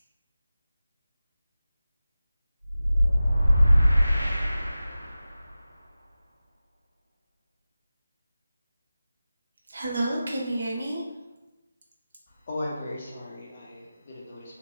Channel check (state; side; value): inverted; both; correlation -0.95